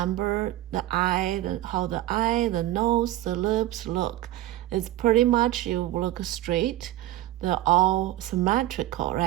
the eye, how the eye, the nose, the lips look. It's pretty much you look straight. They're all symmetrical,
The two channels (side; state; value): left; quieter; 14.9 dB